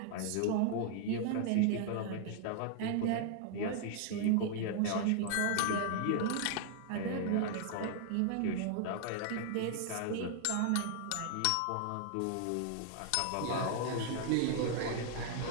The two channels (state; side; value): different; both; correlation 0.00